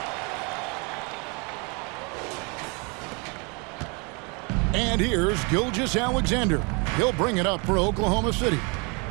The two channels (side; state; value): left; quieter; 31.9 dB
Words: And here's Gilgeous-Alexander. He'll bring it up for Oklahoma City.